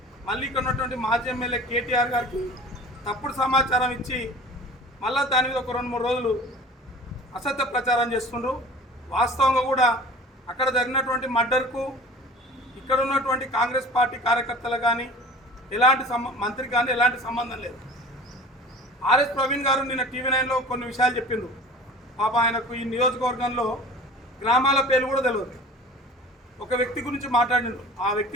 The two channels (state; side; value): normal; both; correlation 0.42